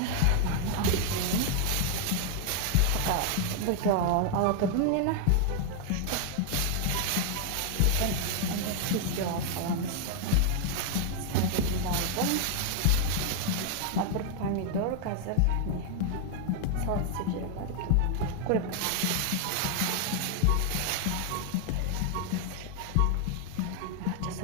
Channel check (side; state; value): both; different; correlation 0.00